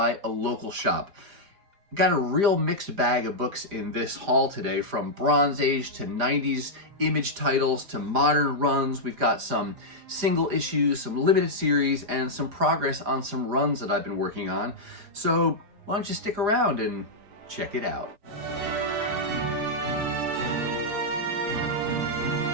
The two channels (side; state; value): left; late; 4.9 ms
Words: a local shop. Got a real mixed bag of books in this haul today, from Bronze Age to 90s image titles to modern runs. We've got some single issues, some limited series, and some progress on some runs that I've been working on. So why don't you stick around and check it out.